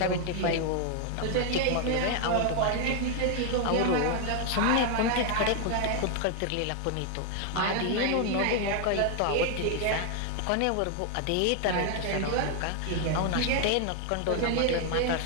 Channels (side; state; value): both; different; correlation 0.00